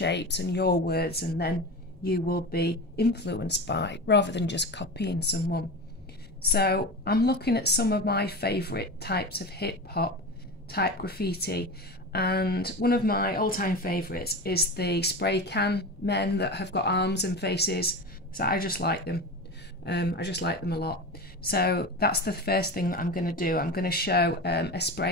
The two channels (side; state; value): both; normal; correlation 0.26